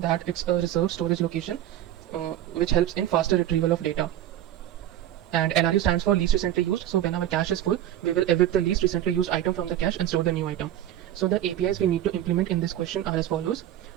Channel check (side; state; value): left; quieter; 12.2 dB